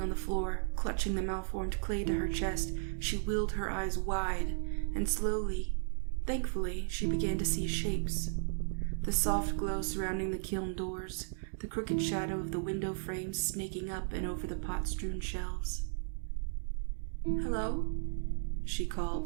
on the floor, clutching the malformed clay to her chest, she willed her eyes wide, and slowly, thankfully, she began to see shapes. The soft glow surrounding the kiln doors, the crooked shadow of the window frames snaking up and over the pot-strewn shelves. "Hello?" she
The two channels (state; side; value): silent; left; digital silence